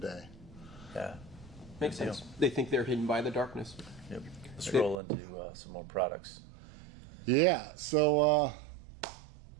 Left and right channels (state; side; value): drops out; left; at 5.0 s